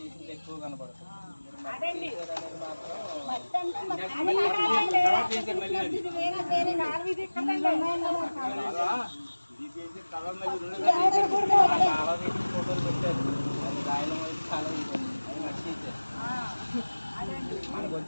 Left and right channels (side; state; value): both; inverted; correlation -1.00